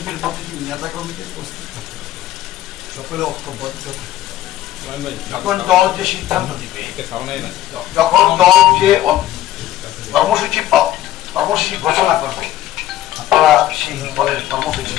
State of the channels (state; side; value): quieter; right; 13.4 dB